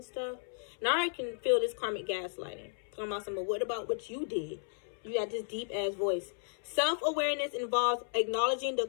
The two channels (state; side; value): silent; right; 55 dB below the other